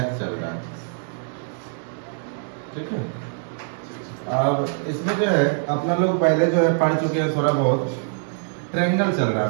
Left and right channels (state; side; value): silent; left; digital silence